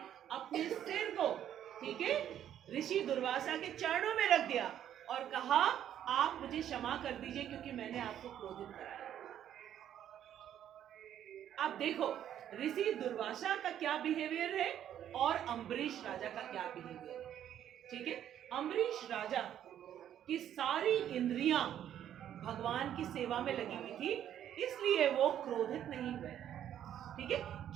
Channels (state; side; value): quieter; left; 10.5 dB